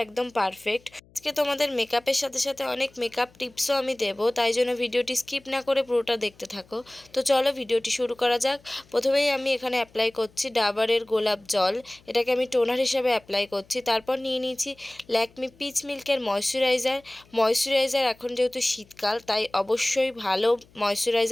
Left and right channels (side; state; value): left; noise; hum, 29 dB below the sound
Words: একদম পারফেক্ট। আজকে তোমাদের মেকআপের সাথে সাথে অনেক মেকআপ টিপসও আমি দেবো, তাই জন্য ভিডিওটি স্কিপ না করে পুরোটা দেখতে থাকো। তো চলো ভিডিওটি শুরু করা যাক। প্রথমেই আমি এখানে অ্যাপ্লাই করছি ডাবরের গোলাপ জল। এটাকে আমি টোনার হিসাবে অ্যাপ্লাই করছি। তারপর নিয়ে নিয়েছি ল্যাকমি পিচ মিল্কের ময়শ্চারাইজার। এখন যেহেতু শীতকাল, তাই অবশ্যই ভালো